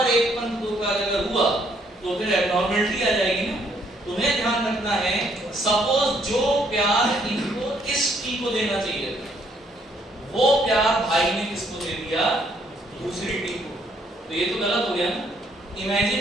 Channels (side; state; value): both; normal; correlation 0.68